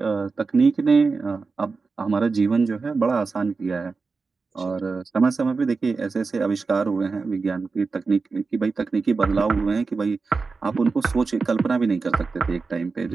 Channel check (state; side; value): quieter; left; 4.4 dB